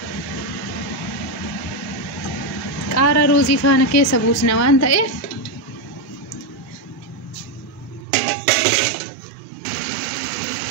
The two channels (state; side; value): drops out; left; at 8.1 s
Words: Qaara ruuzii faana keessa buusna waan ta'eef